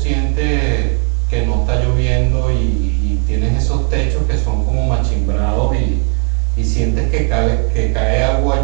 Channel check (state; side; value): quieter; left; 37.9 dB